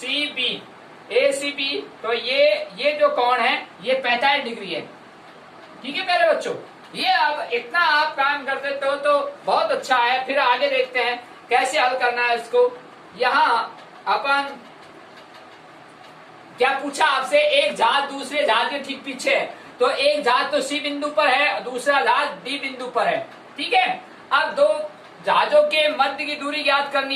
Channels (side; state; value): both; identical; correlation 1.00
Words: बी, तो ये जो कोण है ये 45 डिग्री है। ठीक है प्यारे बच्चों, ये अब इतना आप काम कर देते हो तो बहुत अच्छा है। फिर आगे देखते हैं कैसे हल करना है इसको। यहाँ अपन क्या पूछा आपसे, एक जहाज दूसरे जहाज के ठीक पीछे है। तो एक जहाज तो सी बिंदु पर है, दूसरा जहाज डी बिंदु पर है। ठीक है, अब दो जहाजों के मध्य की दूरी ज्ञात